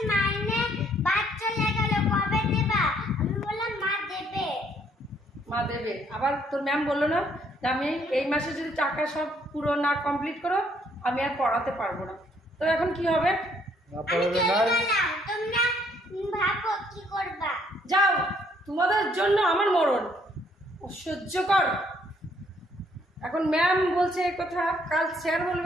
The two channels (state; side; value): normal; both; correlation 0.67